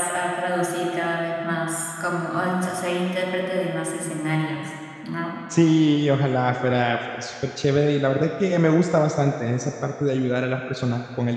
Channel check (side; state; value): both; identical; correlation 1.00